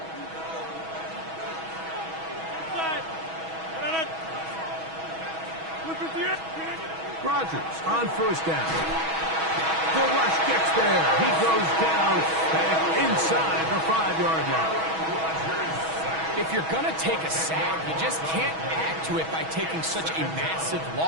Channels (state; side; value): late; left; 6.2 ms